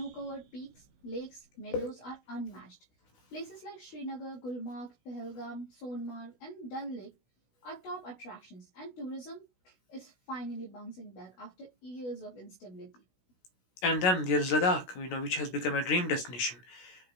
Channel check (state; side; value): late; right; 16 ms